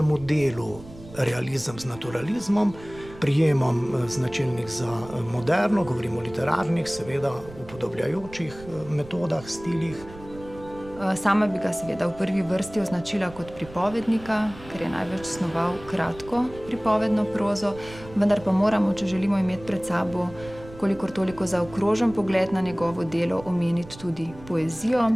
delu, realizem z naturalizmom, prijemom značilnih za moderno, govorimo o literarnih, seveda upodobljajočih metodah, stilih. Sama bi ga seveda v prvi vrsti označila kot pripovednika, ker je največ snoval kratko pripovedno prozo, vendar pa moramo, če želimo imeti pred sabo kolikor toliko zaokrožen pogled na njegovo delo, omeniti tudi poezijo.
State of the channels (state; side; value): noise; right; rumble, 18 dB below the sound